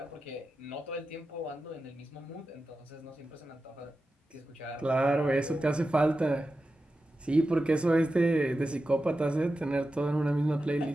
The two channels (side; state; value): both; normal; correlation 0.92